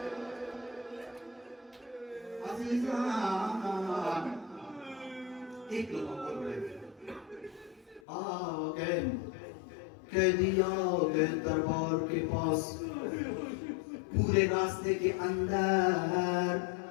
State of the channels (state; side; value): drops out; right; at 8.0 s